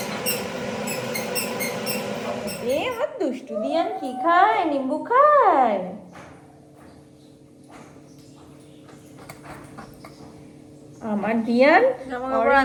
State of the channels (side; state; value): both; identical; correlation 1.00